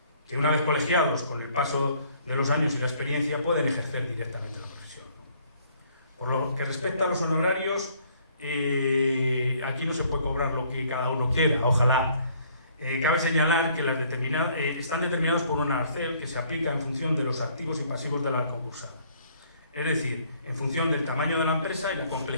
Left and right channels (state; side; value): inverted; both; correlation -0.62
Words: que una vez colegiados con el paso de los años y la experiencia pueden ejercer directamente la profesión. Por lo que respecta a los honorarios, aquí no se puede cobrar lo que cada uno quiera, ojalá. Cabe señalar que están determinados por un arancel que se aplica en función de los activos y pasivos de la concursal, es decir, en función del tamaño de la empresa y la